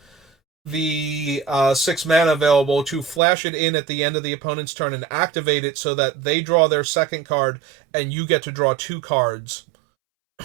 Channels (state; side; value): drops out; left; at 3.2 s